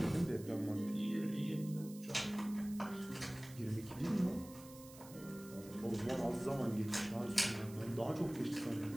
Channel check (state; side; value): noise; right; hiss, 18 dB below the sound